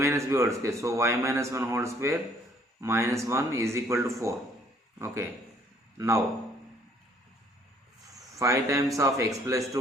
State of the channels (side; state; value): both; normal; correlation 0.61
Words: b whole square. So y minus 1 whole square minus 1 is equal to 4. Okay. Now 5 times of x plus